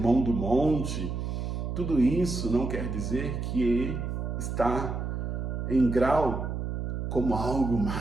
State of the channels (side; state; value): right; noise; hum, 3 dB below the sound